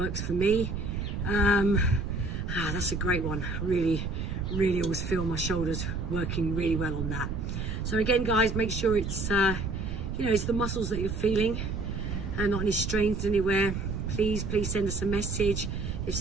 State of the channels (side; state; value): right; noise; rumble, 3 dB below the sound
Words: for me. That's a great one. Really always feel my shoulders working really well on that. So again, guys, make sure it's you know, it's the muscles that you're feeling and not any strains anywhere. Please send us a message if